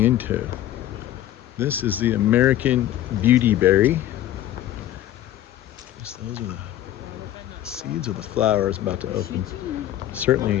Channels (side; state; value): right; quieter; 12.7 dB